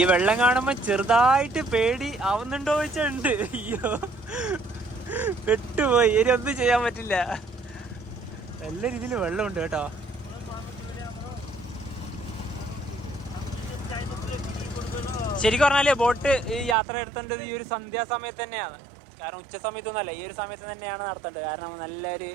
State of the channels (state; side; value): drops out; left; at 16.8 s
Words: വെള്ളം കാണുമ്പോ ചെറുതായിട്ട് പേടി ആവുന്നുണ്ടോ വെച്ചുണ്ട്. അയ്യോ, പെട്ടുപോയി. ഇനി ഒന്നും ചെയ്യാൻ പറ്റില്ല. നല്ല രീതിയിൽ വെള്ളമുണ്ട് കേട്ടോ. ശരിക്കും പറഞ്ഞാല് ബോട്ട് ഈ യാത്ര എടുത്തേണ്ടത് ഈ ഒരു സന്ധ്യാസമയത്ത് തന്നെയാണ്. കാരണം ഉച്ച സമയത്തൊന്നുമല്ല, ഈ ഒരു സമയത്ത് തന്നെയാണ് നടത്തേണ്ടത്. കാരണം